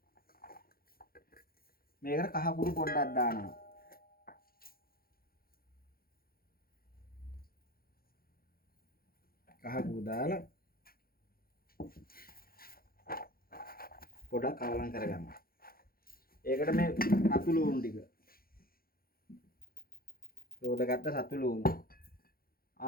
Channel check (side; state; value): right; late; 0.43 ms